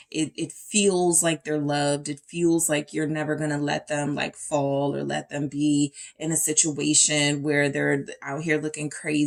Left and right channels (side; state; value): both; identical; correlation 1.00